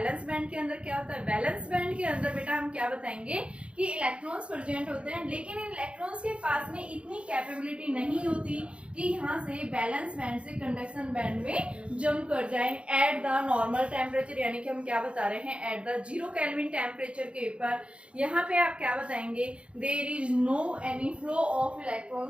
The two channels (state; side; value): late; left; 0.059 ms